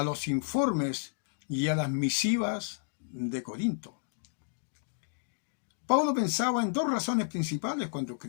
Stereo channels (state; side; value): silent; right; digital silence